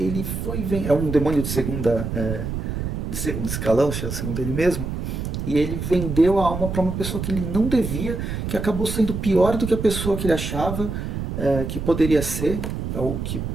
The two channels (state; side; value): noise; right; rumble, 4 dB below the sound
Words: é um demônio de segundo escalão, segundo ele mesmo, e ele vendeu a alma para uma pessoa que ele não devia, que acabou sendo pior do que a pessoa que ele achava que poderia ser, ou que